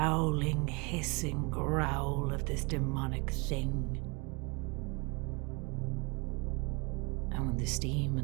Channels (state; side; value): quieter; left; 30.1 dB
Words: hissing growl of this demonic thing. And when the steam